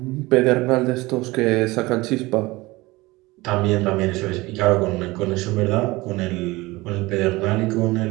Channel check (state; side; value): quieter; left; 21.1 dB